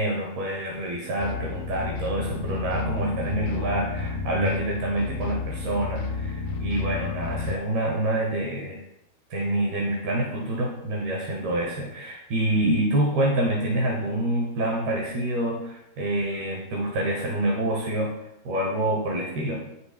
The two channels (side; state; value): left; late; 13 ms